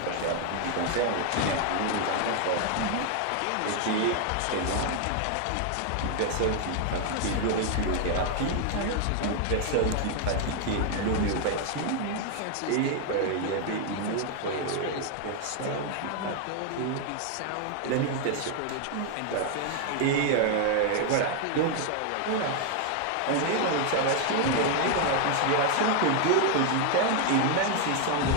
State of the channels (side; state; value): both; different; correlation 0.00